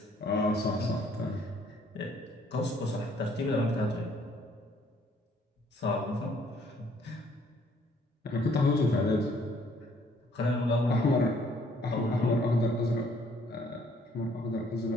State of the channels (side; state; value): both; normal; correlation 0.63